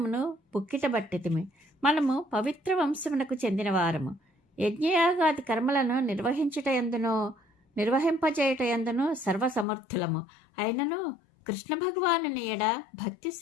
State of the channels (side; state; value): right; drops out; at 9.7 s